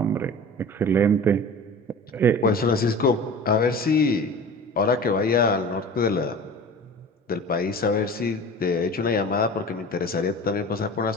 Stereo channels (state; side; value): normal; both; correlation 0.37